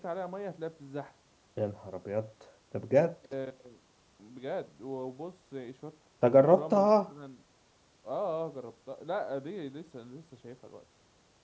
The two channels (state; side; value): identical; both; correlation 1.00